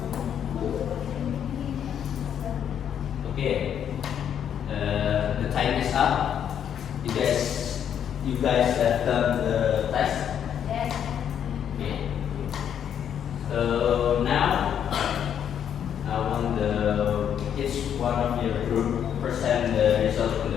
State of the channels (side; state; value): right; quieter; 9.0 dB